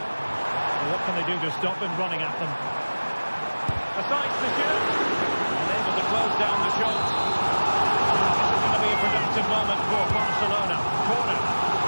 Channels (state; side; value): inverted; both; correlation -1.00